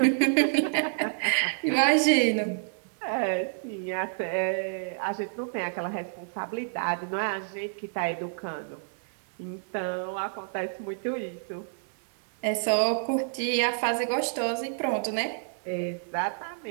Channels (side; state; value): left; silent; 59 dB below the other